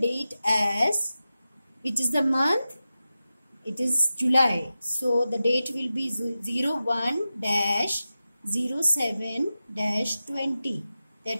as, which is the month, it is July. So the date will be 01-07-20.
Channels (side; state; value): both; inverted; correlation -0.93